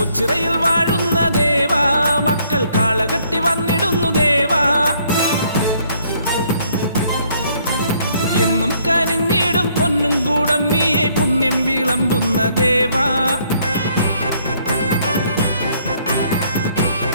വാഴുന്ന ദേവാ മക്കൾ കാളകെട്ടി വന്നിടുന്നു ദേവാ എന്നും കനിഞ്ഞിടും പൊന്നും കൂടമ്മിയെ പുണ്യം വിളമ്പുന്ന ദേവാ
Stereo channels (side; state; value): both; inverted; correlation -0.66